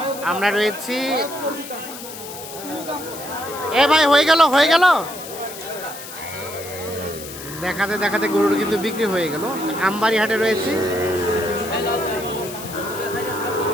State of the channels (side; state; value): left; noise; hiss, 12 dB below the sound